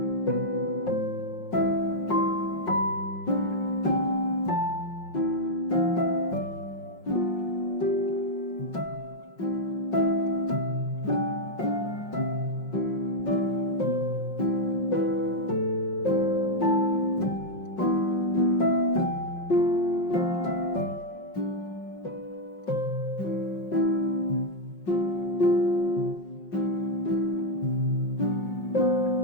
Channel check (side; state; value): right; late; 5.5 ms